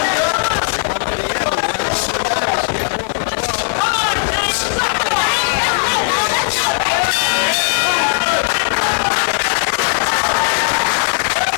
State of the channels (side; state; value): right; silent; 61 dB below the other